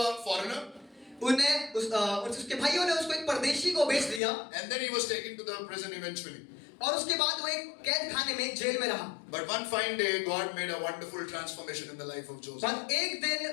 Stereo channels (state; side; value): drops out; right; at 4.2 s